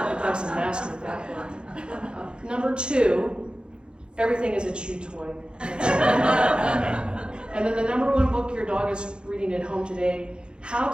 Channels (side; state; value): left; late; 0.052 ms